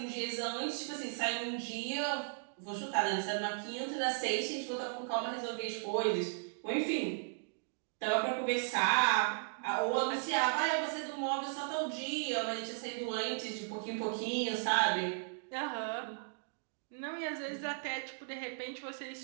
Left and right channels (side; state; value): left; silent; digital silence